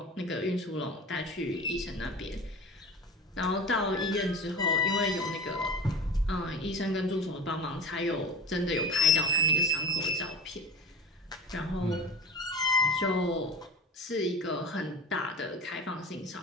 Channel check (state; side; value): normal; both; correlation 0.33